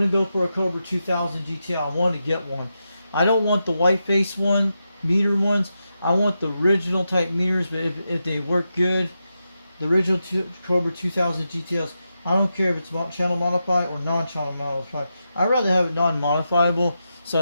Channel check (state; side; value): inverted; both; correlation -0.88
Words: to go for a Cobra 2000 GTI. I want to get one. I don't want the white face one, meter ones. I want the original type meters, but if they work good, the original Cobra 2000 GTLs. I don't care if it's channel modified or non-channel modified. I'd rather have it non-modifiable, so